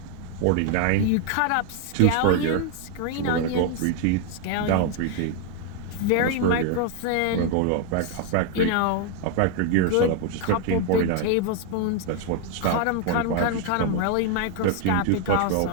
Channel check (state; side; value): different; both; correlation 0.01